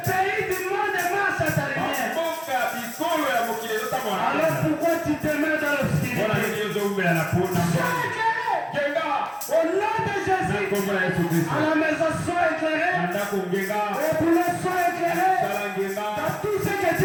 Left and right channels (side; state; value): both; identical; correlation 1.00